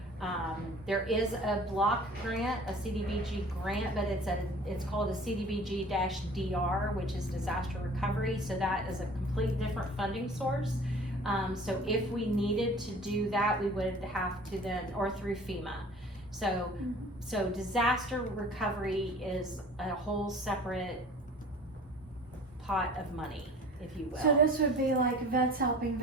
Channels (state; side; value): normal; both; correlation 0.46